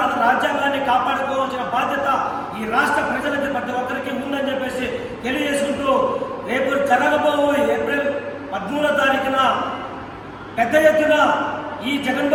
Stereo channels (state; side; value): identical; both; correlation 1.00